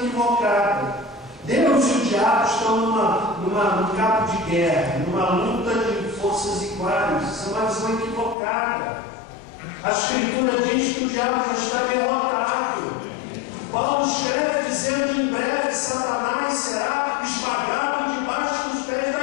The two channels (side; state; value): right; drops out; at 8.3 s